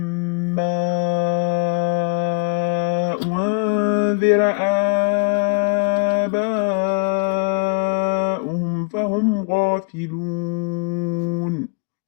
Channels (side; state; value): right; quieter; 31.2 dB